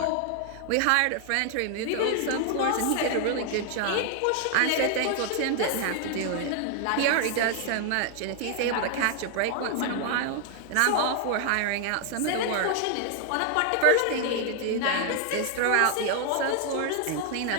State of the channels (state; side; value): different; both; correlation 0.00